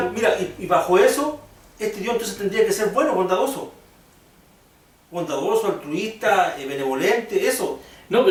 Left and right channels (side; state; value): both; identical; correlation 1.00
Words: mira, y bajo eso, este Dios entonces tendría que ser bueno, bondadoso. Bondadoso, altruista, benevolente, eso. No,